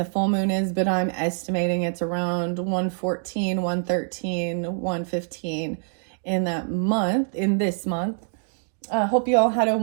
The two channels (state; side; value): silent; left; 58 dB below the other